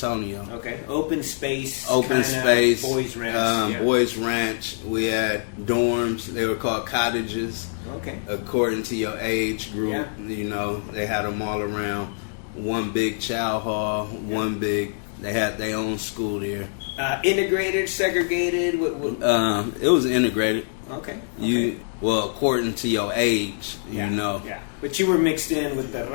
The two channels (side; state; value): right; silent; digital silence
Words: Okay. Open space kind of boys ranch. Boys ranch. We had dorms. They were called cottages. Okay. According to your age group. Yeah. They had them all around. One big chow hall. One big. They had their own school there. Integrated, segregated. It was integrated. Okay. According to your age, Yeah. But you were mixed in with the